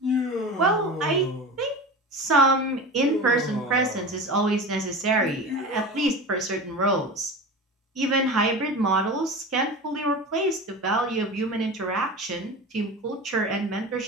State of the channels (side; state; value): both; normal; correlation 0.31